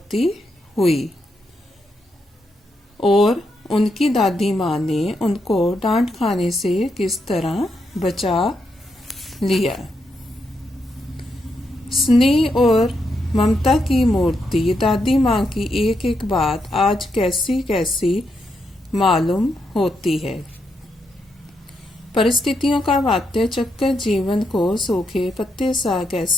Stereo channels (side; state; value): both; normal; correlation 0.81